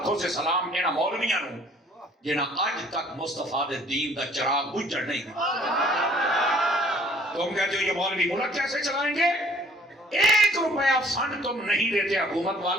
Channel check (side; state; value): both; normal; correlation 0.57